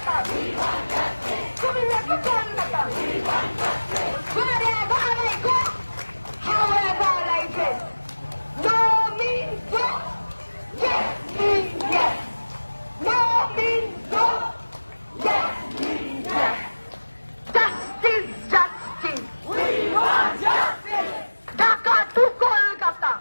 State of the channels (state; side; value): inverted; both; correlation -1.00